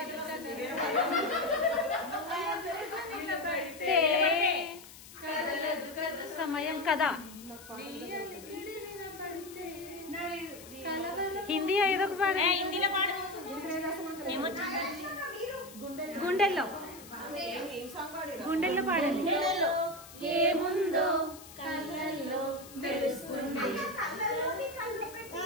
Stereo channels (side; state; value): left; noise; hiss, 18 dB below the sound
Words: సమయం కదా. హిందీ ఏదో ఒక పాడు. హిందీలో పాడు గుండెల్లో గుండెల్లో పాడండి. ఏముందో కళ్ళల్లో తెలుస్తుంది.